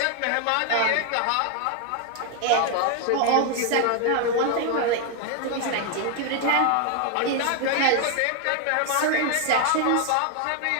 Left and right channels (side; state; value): both; different; correlation 0.00